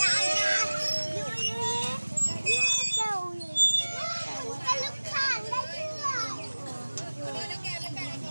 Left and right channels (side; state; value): both; inverted; correlation -1.00